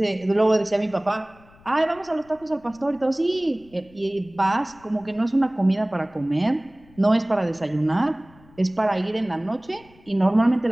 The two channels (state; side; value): noise; left; rumble, 27 dB below the sound